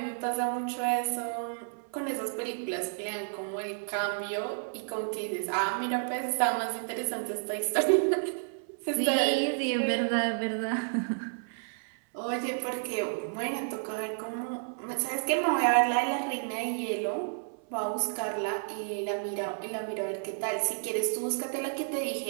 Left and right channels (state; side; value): silent; left; 57 dB below the other